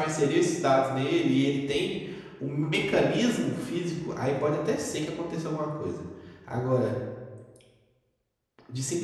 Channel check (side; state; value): both; identical; correlation 1.00